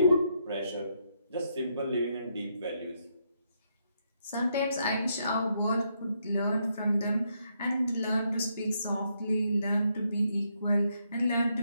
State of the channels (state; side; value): inverted; both; correlation -0.77